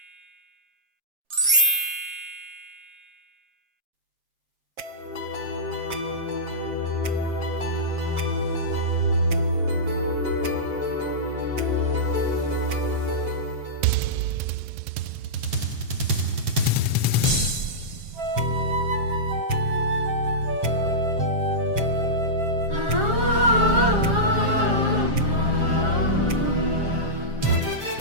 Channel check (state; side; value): late; left; 7.4 ms